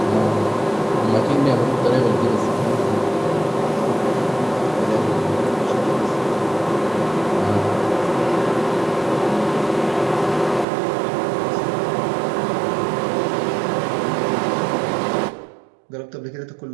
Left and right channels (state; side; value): drops out; left; at 10.7 s